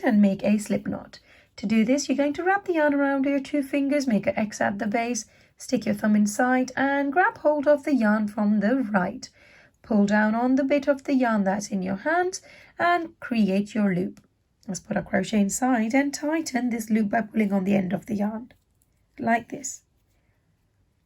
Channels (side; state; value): both; identical; correlation 1.00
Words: and make a slip knot. To do this you're going to wrap the yarn around your two fingers, make an X at the base, stick your thumb inside and grab hold of the yarn from the right. Pull down on the bit of the yarn that's in your hand and create your loop. Let's put our crochet inside and tighten this loop by pulling on the end of the yarn, like this.